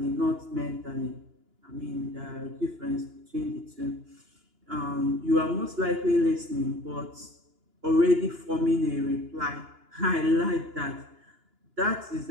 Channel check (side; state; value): left; late; 2.9 ms